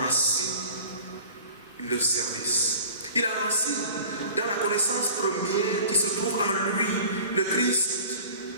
le service. Il enracine dans la connaissance première qui se trouve en lui, le Christ.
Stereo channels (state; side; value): inverted; both; correlation -0.43